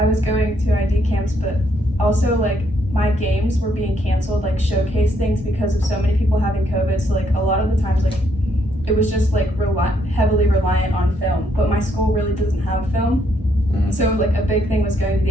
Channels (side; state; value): both; normal; correlation 0.72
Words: was going to ID camps, but also like my games were being canceled, like showcase things because of so many people having COVID. So like a lot of the times, like it was just like heavily reliant on film. But my school really doesn't have film, so like a big thing was going to